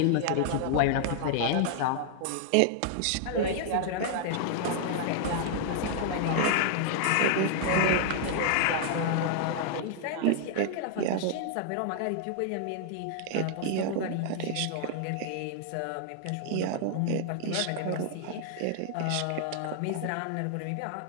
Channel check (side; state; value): both; different; correlation -0.01